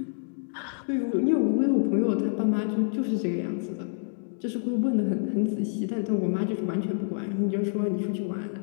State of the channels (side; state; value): right; silent; digital silence